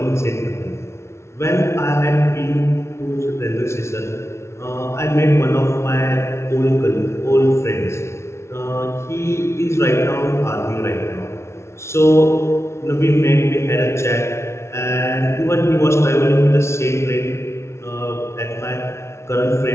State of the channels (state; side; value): late; right; 0.13 ms